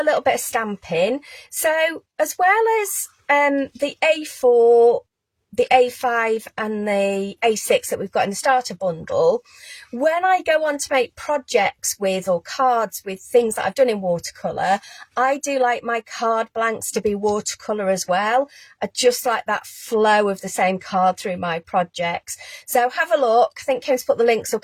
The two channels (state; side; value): identical; both; correlation 1.00